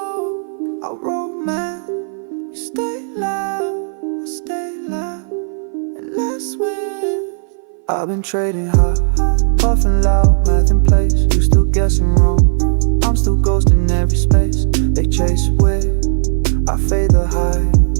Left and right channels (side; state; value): left; silent; 59 dB below the other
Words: I roll man. You stay loud, I stay loud, and let's win. I've been trading high, puffing loud, math in place. You still guessing wrong, I'm still ghosting every space. They chase with, I fade the high,